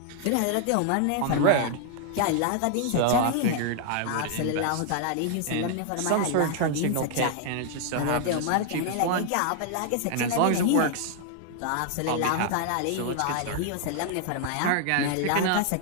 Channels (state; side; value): different; both; correlation 0.00